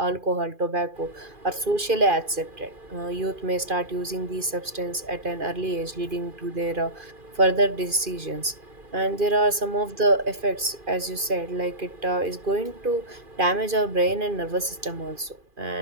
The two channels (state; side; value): late; left; 2.5 ms